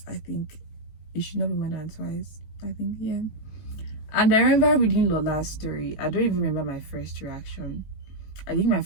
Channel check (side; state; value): right; late; 18 ms